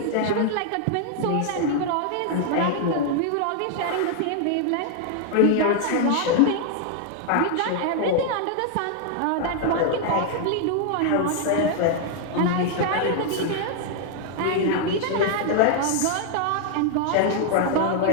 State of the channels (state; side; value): different; both; correlation 0.00